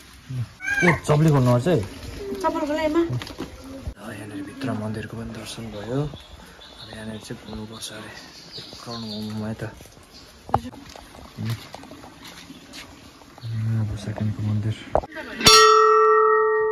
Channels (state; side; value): identical; both; correlation 1.00